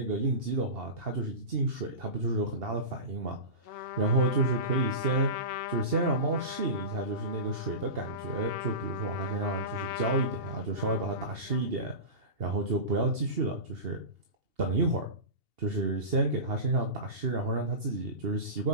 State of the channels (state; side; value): late; left; 2.8 ms